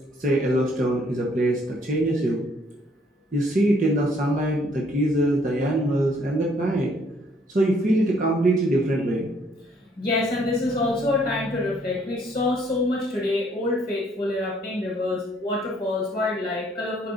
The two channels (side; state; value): both; normal; correlation 0.65